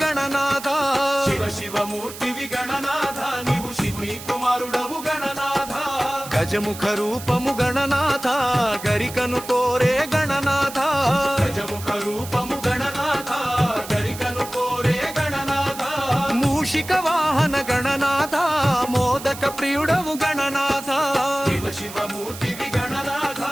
గణనాథ శివమూర్తివి గణనాథ నీవు శివుని కుమారుడవు గణనాథ గజముఖ రూపము గణనాథ గరికను కోరే గణనాథ గజముఖ రూపము గణనాథ గరికను కోరే గణనాథ మూషిక వాహన గణనాథ మోదక ప్రియుడవు గణనాథ శివమూర్తివి గణనాథ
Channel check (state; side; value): noise; right; hiss, 13 dB below the sound